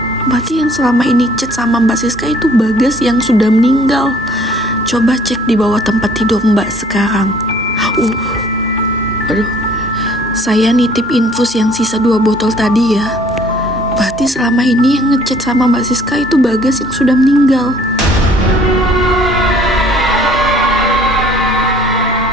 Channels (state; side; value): normal; both; correlation 0.57